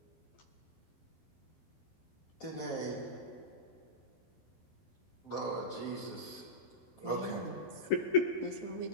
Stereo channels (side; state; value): right; late; 12 ms